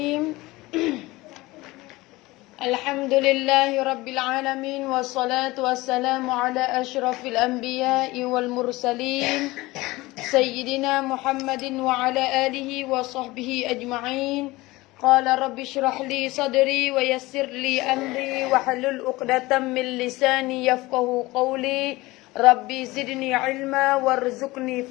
Alhamdulillahi rabbil alamin. Wassalatu wassalamu ala ashrafil anbiya'i wal mursalin Sayyidina Muhammadin wa ala alihi wa sahbihi ajma'in. Qala rabbi shrah li sadri wa yassir li amri wa halul uqdatan min lisani yafqahu qawli. Rabbi zidni ilma warzuqni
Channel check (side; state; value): right; quieter; 20.4 dB